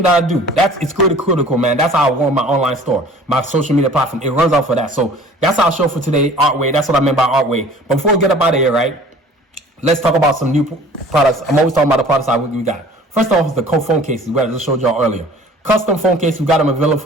that I do. It's critical, man. That's how I run my online store, my social media platform. It runs out for that. So that's our show for today, Artway. That's what I meant by Artway. But before we get up out of here, right, let's talk about some new products. I'm always talking about the products we got. First off is the phone cases, where I just showed y'all earlier. Custom phone case, we got them available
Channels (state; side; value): normal; both; correlation 0.48